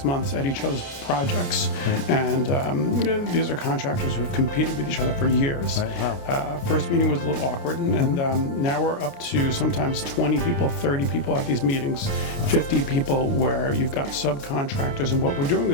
months at each other's projects. And these are contractors who've competed with each other for years. Right. Wow. First meeting was a little awkward, and now we're up to sometimes 20 people, 30 people at these meetings, 50 people, where you've got subcontractors, and what we're doing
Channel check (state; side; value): late; right; 29 ms